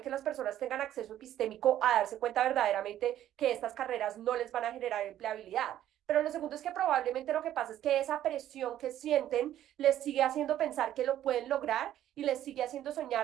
que las personas tengan acceso epistémico a darse cuenta verdaderamente que estas carreras no les van a generar empleabilidad. Pero lo segundo es que probablemente lo que pasa es que esa presión que sienten les sigue haciendo pensar que lo pueden lograr y les sigue haciendo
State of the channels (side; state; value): left; quieter; 12.0 dB